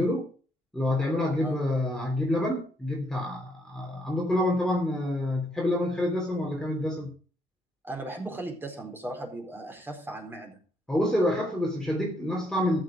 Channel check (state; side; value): normal; both; correlation 0.73